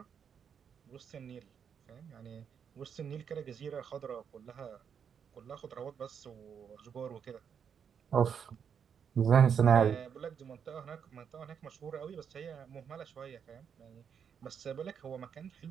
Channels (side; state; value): left; quieter; 7.4 dB